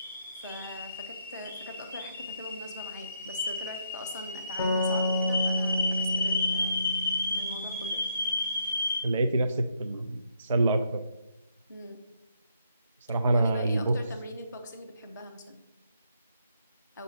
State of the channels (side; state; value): both; inverted; correlation -0.75